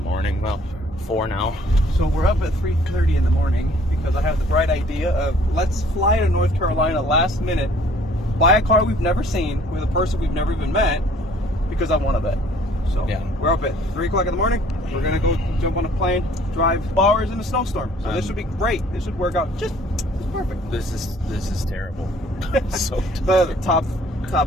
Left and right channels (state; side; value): normal; both; correlation 0.57